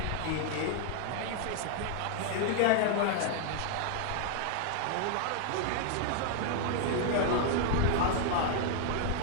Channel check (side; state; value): both; different; correlation 0.00